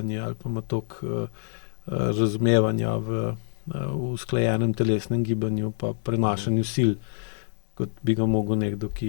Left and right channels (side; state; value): right; silent; 58 dB below the other